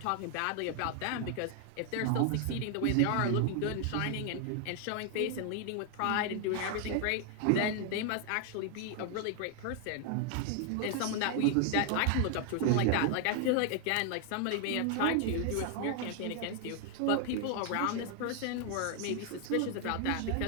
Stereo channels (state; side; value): different; both; correlation 0.00